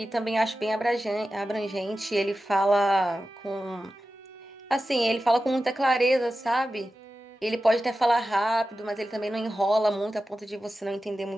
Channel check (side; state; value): both; normal; correlation 0.93